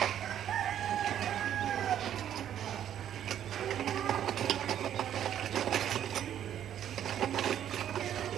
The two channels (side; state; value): left; quieter; 10.4 dB